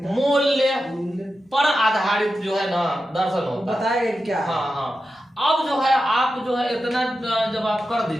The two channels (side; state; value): both; normal; correlation 0.91